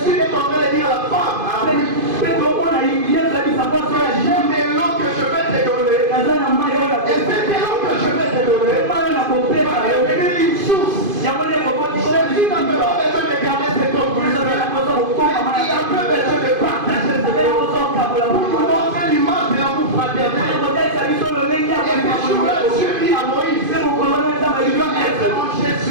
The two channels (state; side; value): late; left; 2.5 ms